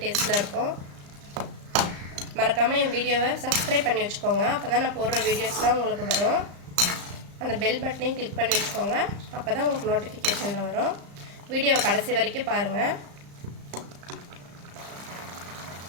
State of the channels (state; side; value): late; left; 35 ms